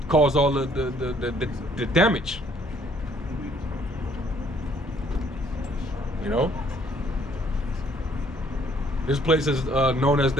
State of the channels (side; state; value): both; normal; correlation 0.63